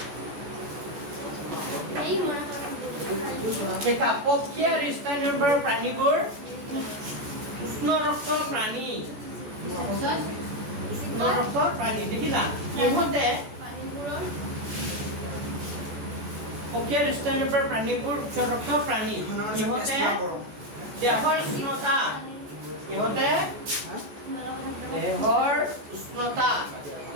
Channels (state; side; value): late; left; 14 ms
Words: এই মনে দেখা পক্ষী আৰু স্তন্যপায়ী প্ৰাণীবোৰ উষ্ণ ৰক্ত প্ৰাণী উষ্ণ ৰক্ত প্ৰাণী দেখিলা ইহঁতে পানীবোৰৰ পক্ষী আৰু স্তন্যপায়ী প্ৰাণীবোৰ উচ্চ ৰক্ত প্ৰাণী ইহঁতে দেহৰ উষ্ণতা ইহঁতে